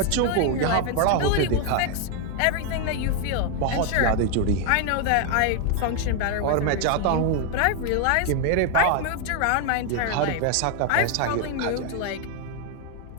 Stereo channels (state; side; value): different; both; correlation 0.00